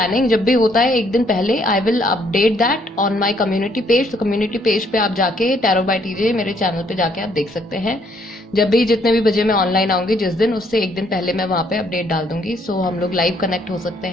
जब भी होता है एक दिन पहले I will update that on my community page. तो कम्युनिटी पेज पे आप जाके टैरो बाय टीजे मेरे चैनल पे जाके आप देख सकते हैं, जब भी जितने भी बजे मैं ऑनलाइन आऊंगी जिस दिन, उससे एक दिन पहले मैं वहां पे अपडेट डाल दूंगी। सो हम लोग लाइव कनेक्ट हो सकते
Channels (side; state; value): both; normal; correlation 0.68